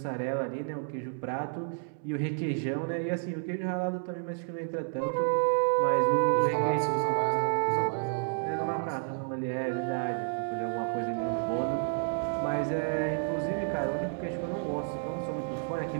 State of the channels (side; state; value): left; silent; 57 dB below the other